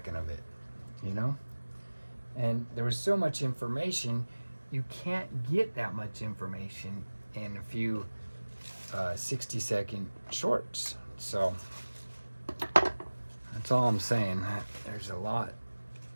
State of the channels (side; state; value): both; inverted; correlation -1.00